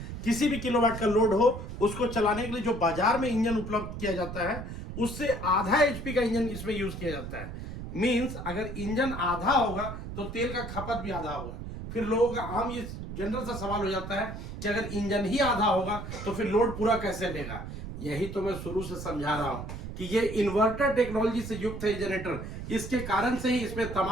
किसी भी किलोवाट का लोड हो उसको चलाने के लिए जो बाजार में इंजन उपलब्ध किया जाता है उससे आधा HP का इंजन इसमें यूज किया जाता है। मींस अगर इंजन आधा होगा तो तेल का खपत भी आधा होगा। फिर लोगों का आम ये जनरल सा सवाल हो जाता है कि अगर इंजन ही आधा होगा तो फिर लोड पूरा कैसे लेगा। यही तो मैं शुरू से समझा रहा हूं कि ये इन्वर्टर टेक्नोलॉजी से युक्त है जनरेटर। इसके कारण से ही इसमें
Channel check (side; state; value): right; noise; rumble, 8 dB below the sound